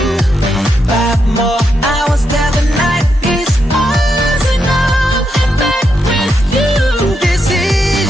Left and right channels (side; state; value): both; normal; correlation 0.82